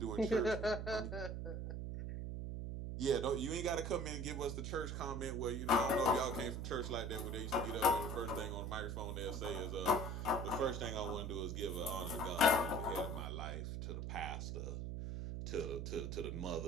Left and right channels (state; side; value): noise; right; hum, 4 dB below the sound